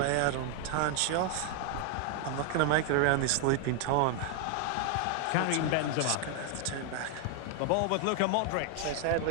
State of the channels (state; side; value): different; both; correlation 0.00